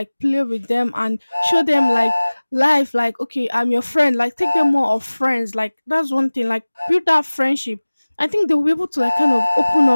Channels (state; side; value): inverted; both; correlation -1.00